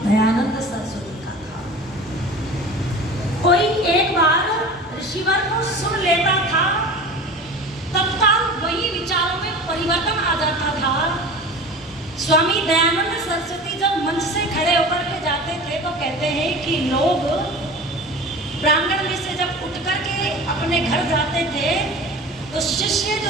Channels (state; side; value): normal; both; correlation 0.36